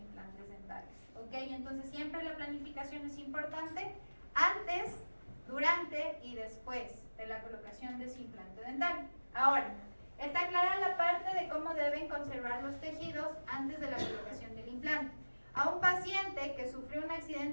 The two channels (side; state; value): both; inverted; correlation -1.00